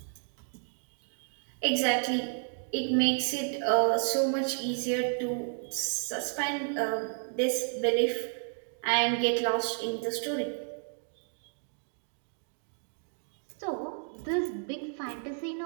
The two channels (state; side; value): silent; left; 57 dB below the other